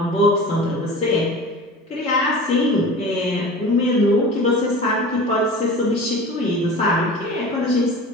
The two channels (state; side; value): normal; both; correlation 0.37